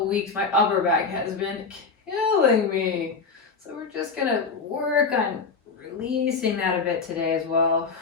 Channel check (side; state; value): right; quieter; 4.8 dB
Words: weeks, my upper back has been killing me. So we're just gonna work on releasing that a bit today as well.